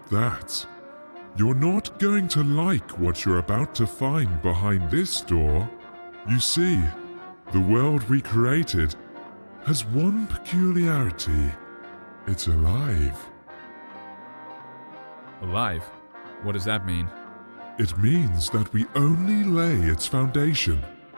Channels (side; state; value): both; inverted; correlation -1.00